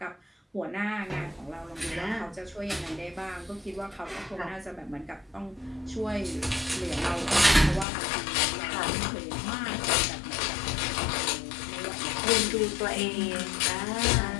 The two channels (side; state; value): right; drops out; at 7.9 s